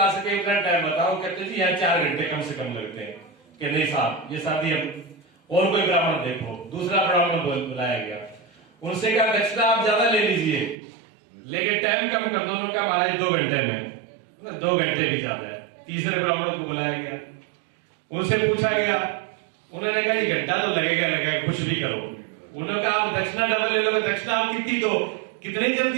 सके उतना टाइम बताओ। कहते जी यहाँ 4 घंटे कम से कम लगते हैं। कि नहीं साहब ये शादी हम और कोई ब्राह्मण देखो। दूसरा ब्राह्मण बुलाया गया, उनसे कहा दक्षिणा आप ज्यादा ले लीजिए लेकिन टाइम कम कर दो। उन्होंने कहा महाराज 2 घंटे में, 2 घंटे भी ज्यादा है। तीसरे ब्राह्मण को बुलाया गया, उनसे पूछा गया, उन्होंने कहा जी घंटा तो लगेगा लगेगा, कुछ भी करो। उन्होंने कहा आप दक्षिणा डबल ले लो। दक्षिणा आप कितनी दो, कितनी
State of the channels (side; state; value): left; drops out; at 10.8 s